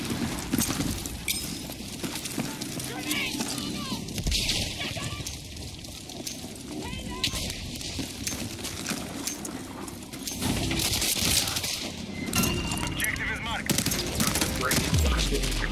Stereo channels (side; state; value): both; identical; correlation 1.00